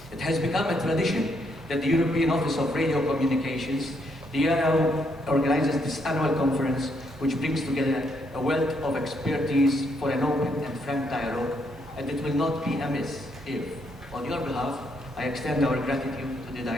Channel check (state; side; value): normal; both; correlation 0.74